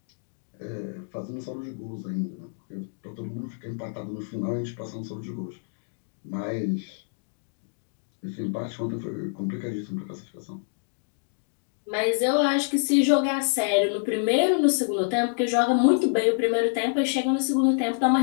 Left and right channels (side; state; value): right; silent; digital silence